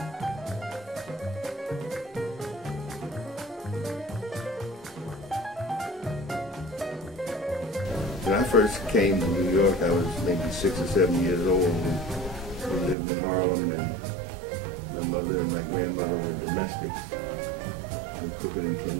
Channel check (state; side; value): drops out; left; at 13.0 s